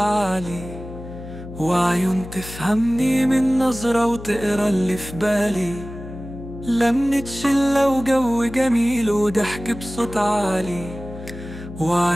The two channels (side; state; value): left; noise; hum, 13 dB below the sound